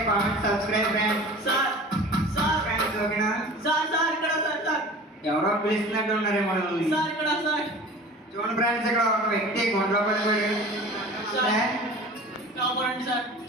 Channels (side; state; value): both; normal; correlation 0.40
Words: comment, subscribe friends. Sir friends ఓకేనా? సార్ ఇక్కడ సార్ ఎవరో పిలుస్తున్నట్టు ఉన్నారేమో మనల్ని. సార్ ఇక్కడ సార్ చూడండి ఫ్రెండ్స్, ఇక్కడ ఒక వ్యక్తి గుండెలో పడిపోయాడు. కాపాడండి సార్.